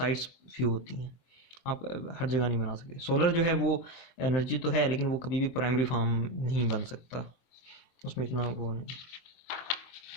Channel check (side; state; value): right; late; 23 ms